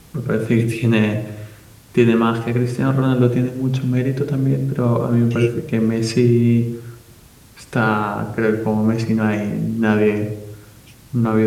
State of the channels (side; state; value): both; identical; correlation 1.00